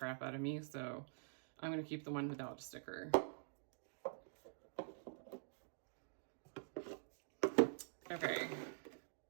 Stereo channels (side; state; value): left; silent; digital silence